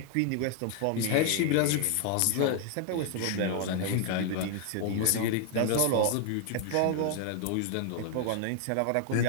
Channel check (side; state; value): both; different; correlation 0.00